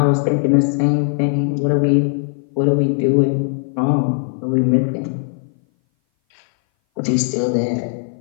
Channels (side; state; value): right; silent; 59 dB below the other